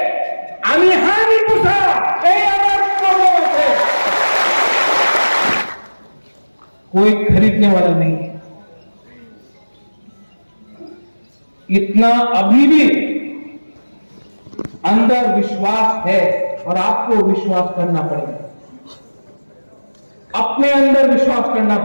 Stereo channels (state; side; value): inverted; both; correlation -1.00